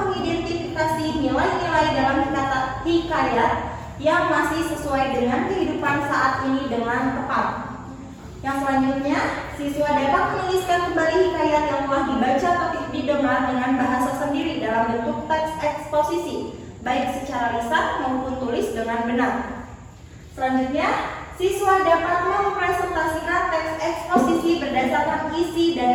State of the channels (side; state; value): both; identical; correlation 1.00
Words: mengidentifikasi nilai-nilai dalam hikayat yang masih sesuai dengan kehidupan saat ini dengan tepat. Yang selanjutnya, siswa dapat menuliskan kembali hikayat yang telah dibaca atau didengar dengan bahasa sendiri dalam bentuk teks eksposisi, baik secara lisan maupun tulis dengan benar. Selanjutnya, siswa dapat mempresentasikan teks eksposisi berdasarkan isi